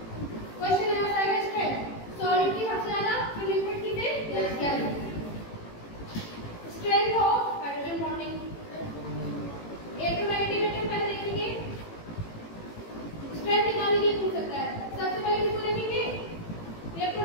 क्वेश्चन ऐसा है स्ट्रेंथ सॉलिड की सबसे ज्यादा, फिर लिक्विड की से gas. Strength of hydrogen bonding electronegative atom पहले देखेंगे, स्ट्रेंथ निकालने के लिए पूछ सकता है। सबसे पहले किसको देखेंगे?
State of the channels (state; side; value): late; right; 18 ms